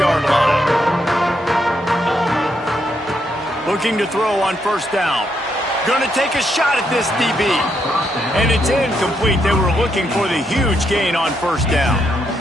line. Looking to throw on 1st down. Going to take a shot at this DB. And it's incomplete. They were looking for the huge gain on 1st down.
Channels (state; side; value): normal; both; correlation 0.78